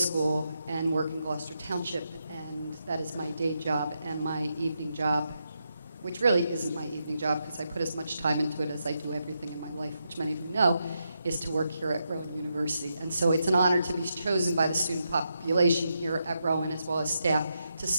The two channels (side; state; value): both; inverted; correlation -0.84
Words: and work in Gloucester Township, and that is my day job, and my evening job, which really isn't my evening job because I put as much time into it as I do everything in my life, which many of you know, is to work here at Rowan University. And so it's an honor to be chosen by the student population here at Rowan as well as staff to